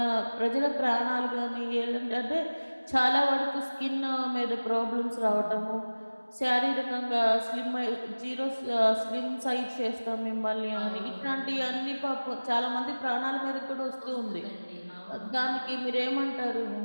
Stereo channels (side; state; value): both; inverted; correlation -1.00